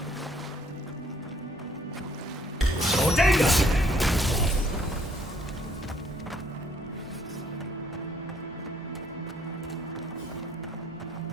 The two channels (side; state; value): both; normal; correlation 0.65